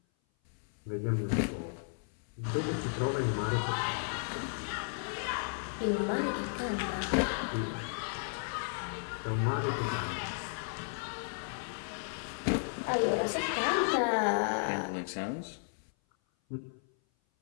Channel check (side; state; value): right; silent; 55 dB below the other